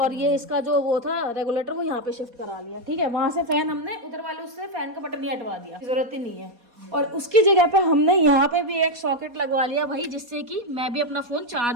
ये इसका जो वो था रेगुलेटर वो यहाँ पे शिफ्ट करा लिया, ठीक है। वहां से फैन हमने उधर वाले उससे फैन का बटन ही हटवा दिया, जरूरत ही नहीं है। और उसकी जगह पे हमने यहाँ पे भी एक सॉकेट लगवा लिया भाई, जिससे कि मैं भी अपना फोन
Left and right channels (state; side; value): late; left; 4.2 ms